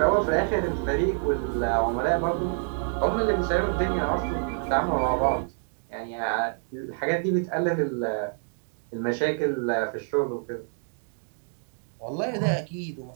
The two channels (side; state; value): left; silent; 57 dB below the other